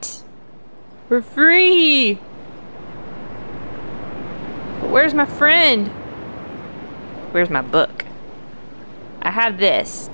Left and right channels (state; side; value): inverted; both; correlation -1.00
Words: We're free! But where's my friend? Where's my book? I have this